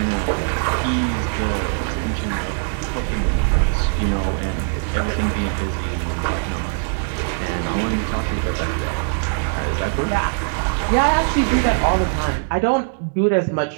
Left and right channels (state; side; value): silent; left; digital silence